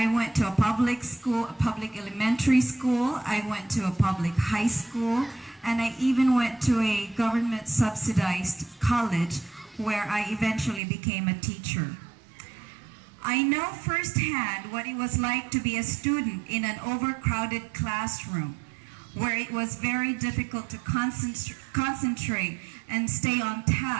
went to a public school, a public elementary school, I went to a public high school, and I even went to a government subsidized college where I eventually became a teacher. I know firsthand what it was like to be a student in an overcrowded classroom where it was very difficult to concentrate and stay on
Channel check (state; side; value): drops out; left; at 10.8 s